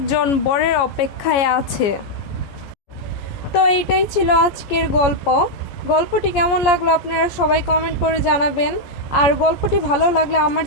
বরের অপেক্ষায় আছে। তো এইটাই ছিল আজকের গল্প। গল্পটি কেমন লাগলো আপনারা সবাই কমেন্ট করে জানাবেন। আর গল্পটি ভালো লাগলে আমার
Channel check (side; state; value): right; late; 14 ms